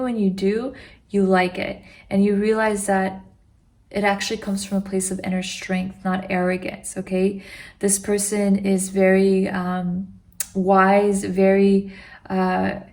when you do, you like it, and you realize that it actually comes from a place of inner strength, not arrogance. Okay, this person is very wise, very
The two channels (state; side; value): identical; both; correlation 1.00